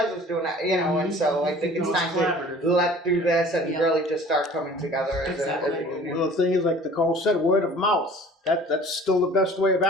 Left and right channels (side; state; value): both; normal; correlation 0.47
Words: is doing that," And so I think it's time to let through this and really just start coming together as a union. Well, the thing is, like Nicole said, word of mouth. That's still the best way of